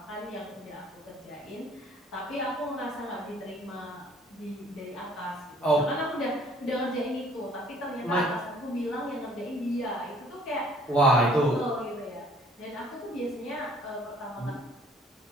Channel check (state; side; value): normal; both; correlation 0.57